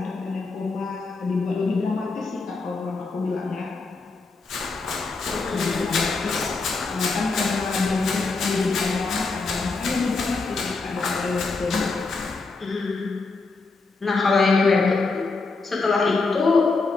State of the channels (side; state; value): right; quieter; 3.9 dB